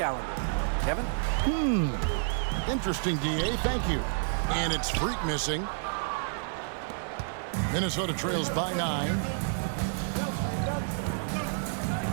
Kevin? Interesting, DA. Thank you. And it's Freak missing. Minnesota trails by 9.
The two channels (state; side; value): silent; left; digital silence